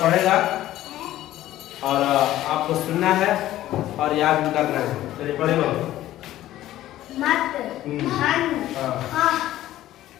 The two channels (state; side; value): quieter; right; 14.2 dB